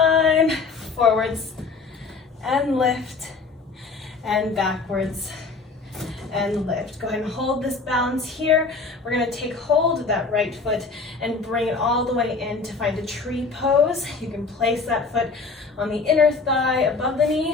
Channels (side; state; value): right; quieter; 4.3 dB